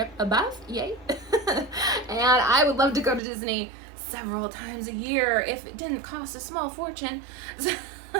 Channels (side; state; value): left; drops out; at 3.2 s